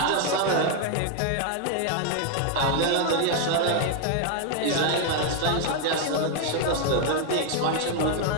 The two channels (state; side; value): different; both; correlation 0.00